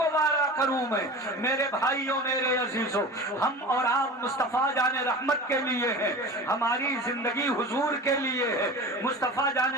وارا کروں میں۔ میرے بھائیوں میرے عزیزوں، ہم اور آپ مصطفیٰ جان رحمت کے لیے ہیں، ہماری زندگی حضور کے لیے ہے، مصطفیٰ جان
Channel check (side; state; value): both; normal; correlation 0.34